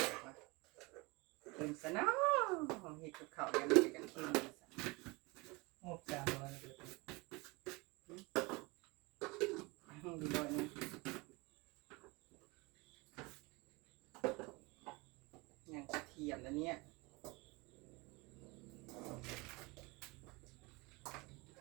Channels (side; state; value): left; quieter; 25.7 dB